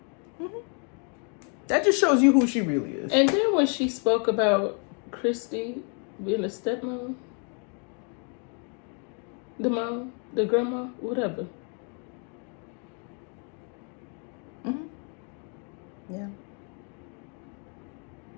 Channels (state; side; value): quieter; right; 38.9 dB